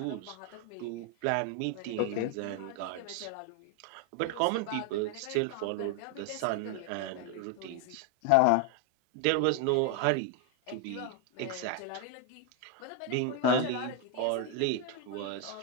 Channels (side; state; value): both; different; correlation 0.01